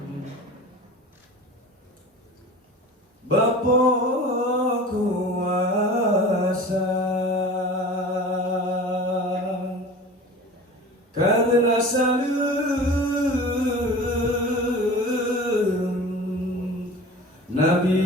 Bapa kuasa karena salam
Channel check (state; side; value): normal; both; correlation 0.38